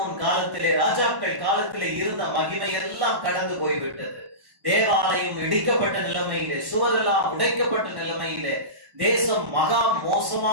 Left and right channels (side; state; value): left; late; 1.1 ms